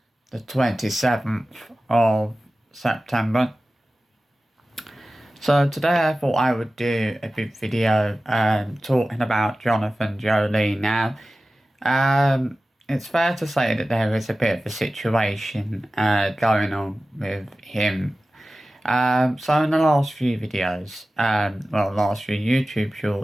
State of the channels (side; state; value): both; normal; correlation 0.96